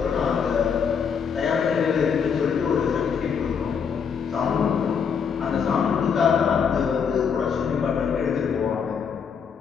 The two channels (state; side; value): quieter; right; 6.7 dB